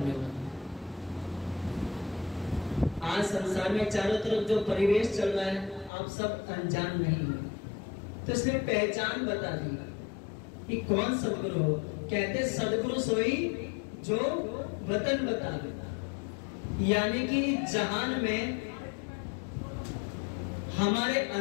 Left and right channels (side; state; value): right; drops out; at 5.9 s